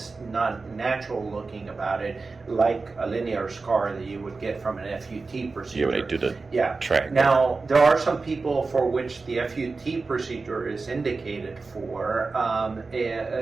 not natural looking about it, like a linear scar that you would get from an F.U.T. procedure. Yeah, when they do the track. Now, there are some people for which the F.U.T. procedure is indicated for,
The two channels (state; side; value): quieter; left; 4.0 dB